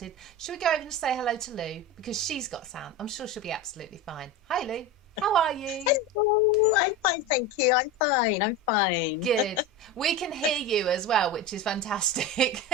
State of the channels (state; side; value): normal; both; correlation 0.24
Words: Should we go over and say hello to Lou, because she's got sound? I'm sure she'll be absolutely fine. Hi Lou, how are you? Hello, I'm fine, thank you. I'm fine. Good. We can hear you as well, which is fantastic.